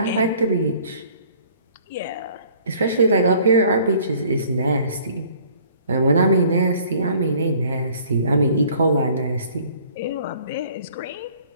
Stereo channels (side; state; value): both; inverted; correlation -0.55